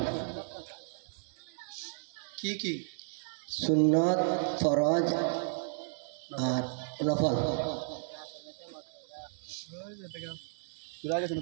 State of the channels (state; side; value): silent; left; 55 dB below the other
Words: কি কি? সুন্নত, ফরজ আর নফল।